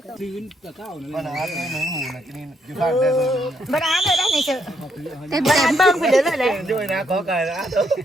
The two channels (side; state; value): both; normal; correlation 0.74